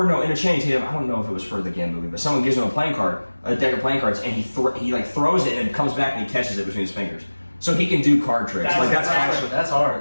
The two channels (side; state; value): both; inverted; correlation -1.00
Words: a Channing Tatum. I don't know if it was for the Gambit movie, but someone gives him a deck of playing cards, and he throws it, and it comes back, and he catches it between his fingers. So he can do card tricks. That's